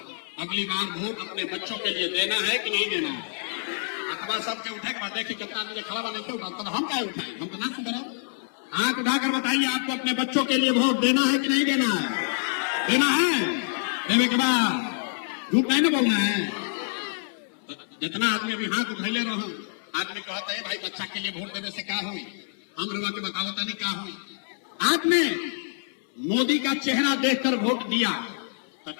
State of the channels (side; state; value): right; silent; 60 dB below the other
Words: अगली बार वोट अपने बच्चों के लिए देना है कि नहीं देना है। अखबार सबके उठे के बाद देखिए कितना आदमी खड़ा बने क्यों उठा, तो हम क्या उठाए, हम तो ना सुधरा। हाथ उठाकर बताइए आपको अपने बच्चों के लिए वोट देना है कि नहीं देना है? देना है। देने के बाद झूठ नहीं ना बोलना है। तो जितना आदमी अभी हाथ उठैले रहो, आदमी कहता है भाई बच्चा के लिए वोट देने से क्या हुई, हम लोग के बताओ नहीं क्या हुई। आपने मोदी का चेहरा देखकर वोट दिया तो